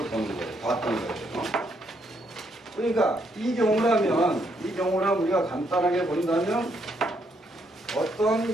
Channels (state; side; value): normal; both; correlation 0.74